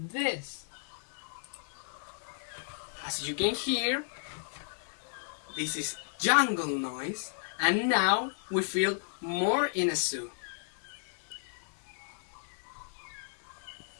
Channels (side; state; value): right; silent; 55 dB below the other